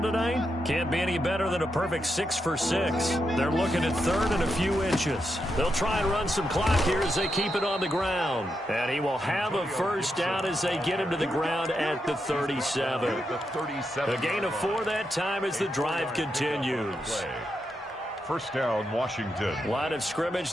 tonight can't be any better than a perfect 6 for 6. They're looking at 3rd and a few inches. They'll try and run some clock here as they keep it on the ground. And he will have a first down as they get him to the ground at the 37. A gain of 4 that time as the drive continues. First down, Washington. Line of scrimmage,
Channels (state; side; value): normal; both; correlation 0.84